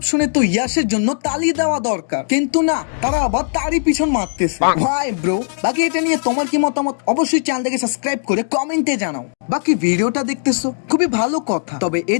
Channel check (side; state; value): right; silent; digital silence